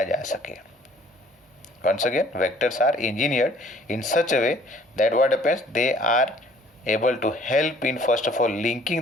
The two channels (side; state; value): both; normal; correlation 0.56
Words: जा सके. Once again, vectors are engineered in such a way that what happens, they are able to help in first of all